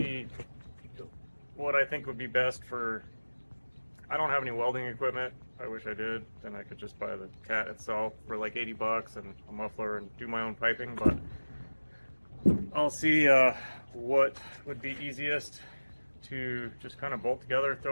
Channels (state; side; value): inverted; both; correlation -1.00